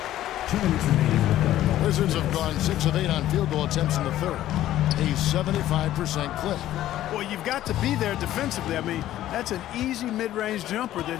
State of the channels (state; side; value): quieter; right; 13.4 dB